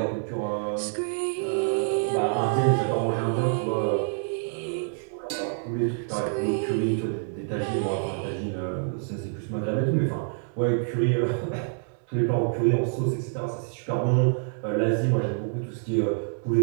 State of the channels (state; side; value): silent; left; digital silence